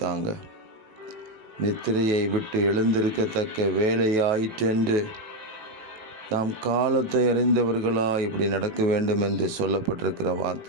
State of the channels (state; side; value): late; left; 19 ms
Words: நித்திரையை விட்டு எழுந்திருக்கத்தக்க வேலையாயிற்றென்று நாம் காலத்தை அறிந்தவர்களா இப்படி நடக்க வேண்டும் என்று சொல்லப்பட்டிருக்கிற